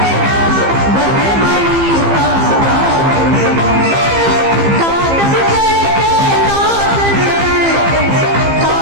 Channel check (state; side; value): late; left; 15 ms